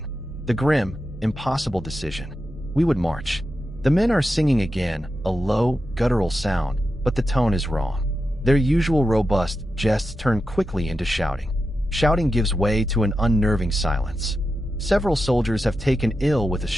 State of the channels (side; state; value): both; normal; correlation 0.89